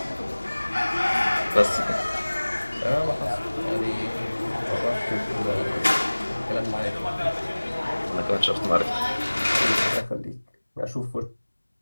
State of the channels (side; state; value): both; inverted; correlation -1.00